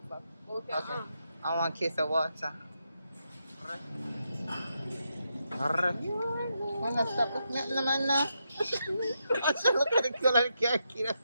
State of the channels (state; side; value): inverted; both; correlation -0.83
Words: back. Okay. I want a case of water. Why not stop looking at the man now? I should look at the color of the car key.